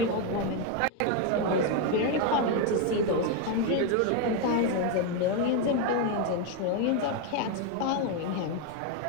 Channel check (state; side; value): different; both; correlation 0.02